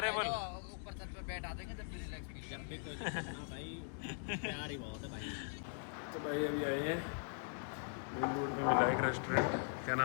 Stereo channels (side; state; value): right; silent; digital silence